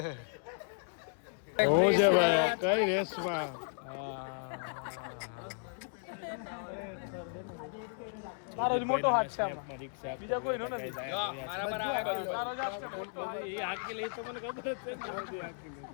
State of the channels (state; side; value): silent; right; digital silence